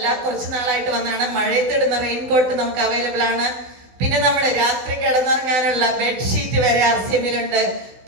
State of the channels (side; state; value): left; late; 16 ms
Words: കുറച്ച് നാളായിട്ട് വന്നതാണ്, മഴയത്തിടുന്ന റെയിൻകോട്ട് നമുക്ക് അവൈലബിൾ ആണ്. പിന്നെ നമ്മുടെ രാത്രി കിടന്നുറങ്ങാനുള്ള ബെഡ്ഷീറ്റ് വരെ ആർസിഎമ്മിലുണ്ട്.